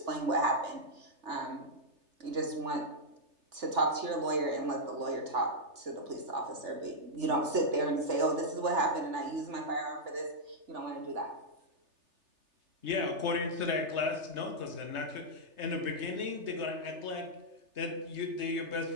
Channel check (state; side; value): late; left; 3.4 ms